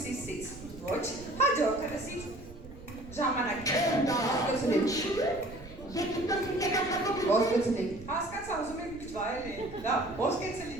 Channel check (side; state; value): right; noise; rumble, 16 dB below the sound